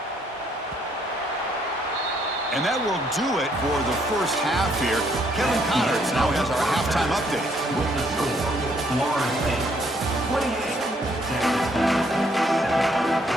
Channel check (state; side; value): normal; both; correlation 0.69